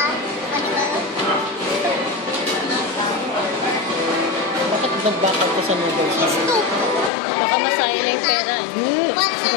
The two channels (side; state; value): right; drops out; at 7.1 s